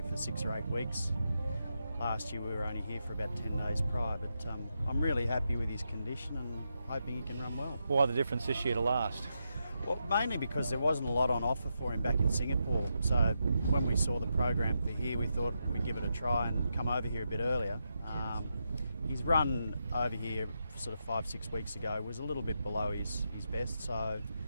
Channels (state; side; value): inverted; both; correlation -0.84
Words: for 6 or 8 weeks. Last year we were only here for about 10 days prior, but I'm really happy with his condition and hoping he can run well. Why the difference this year to last? Well, mainly because there wasn't a lot on offer for him back in Singapore. So when we saw the program for here, we thought we'd give it a try and come over here a bit earlier. His run over here sort of 5-6 weeks ago was a little bit below his best, so